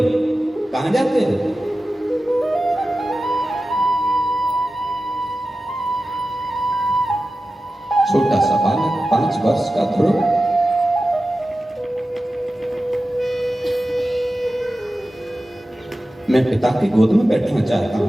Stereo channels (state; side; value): normal; both; correlation 0.94